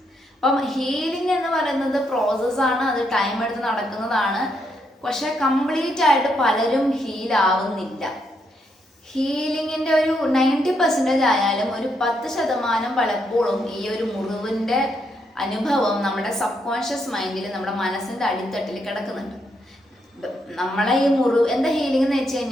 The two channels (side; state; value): both; normal; correlation 0.78